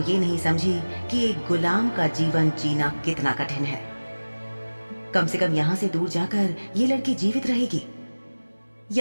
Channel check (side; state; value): both; inverted; correlation -1.00